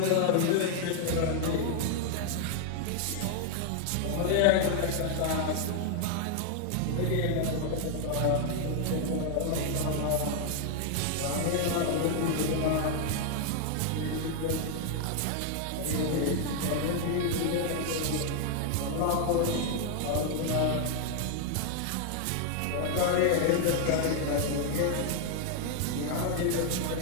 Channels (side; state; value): both; different; correlation 0.00